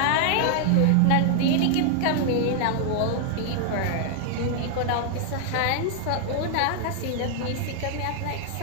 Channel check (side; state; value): both; different; correlation 0.00